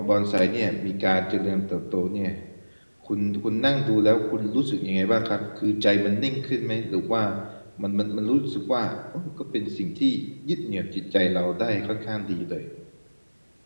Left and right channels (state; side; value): inverted; both; correlation -1.00